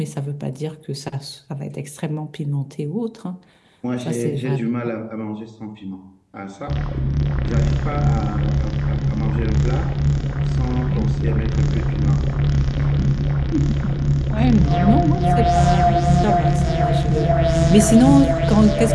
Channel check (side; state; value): both; identical; correlation 1.00